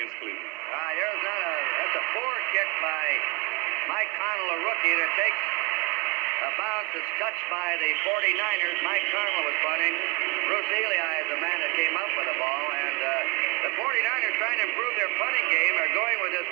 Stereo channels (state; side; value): quieter; left; 27.8 dB